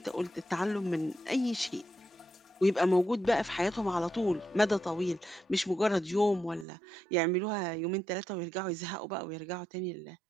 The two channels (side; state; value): left; drops out; at 6.7 s